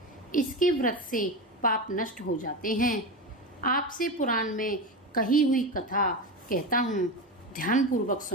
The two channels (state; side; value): normal; both; correlation 0.21